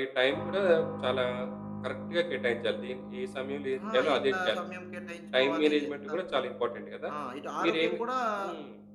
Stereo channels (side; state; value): both; identical; correlation 1.00